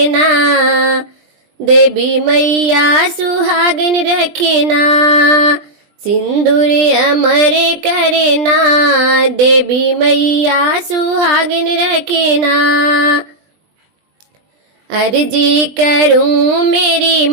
देवी मैया सुहागन रखना, सिंदूर अमर करना, देवी मैया सुहागन रखना। अर्जी करूं मेरी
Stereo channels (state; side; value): late; left; 20 ms